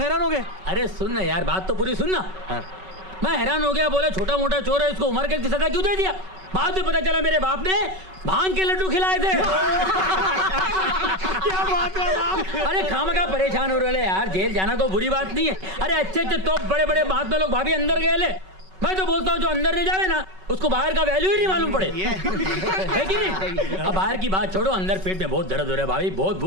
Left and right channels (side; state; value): left; late; 5.3 ms